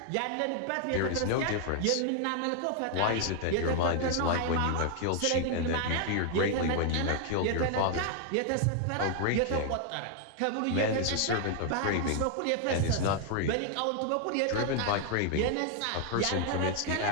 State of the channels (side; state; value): both; different; correlation 0.00